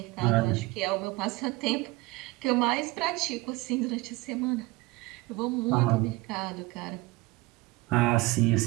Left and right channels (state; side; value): quieter; left; 21.4 dB